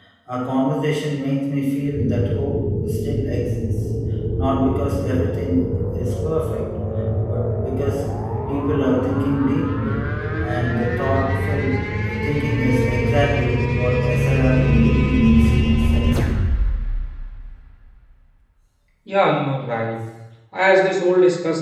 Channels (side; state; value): both; identical; correlation 1.00